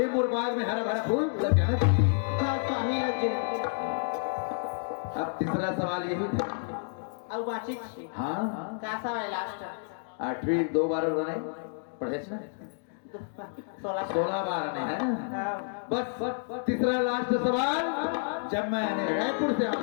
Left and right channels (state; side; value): silent; right; digital silence